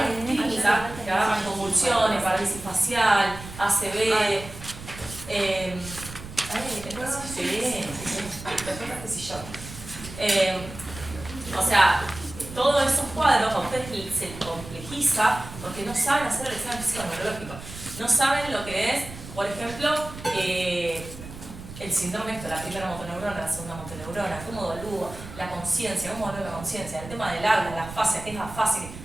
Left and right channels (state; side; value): noise; right; rumble, 13 dB below the sound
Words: en clínica, que agarran convulsiones, parálisis facial, ACV, o sea, todos esos cuadros a ustedes se les complejiza porque no saben hacer el examen físico neurológico. No saben lo que es, por ejemplo, el síndrome esto, la primera motoneurona, la segunda motoneurona, cómo evalúo la conciencia, cómo evalúo la conciencia, el tema del habla, la fascia, qué es la fascia.